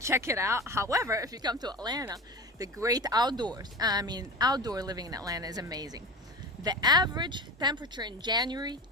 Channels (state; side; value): normal; both; correlation 0.30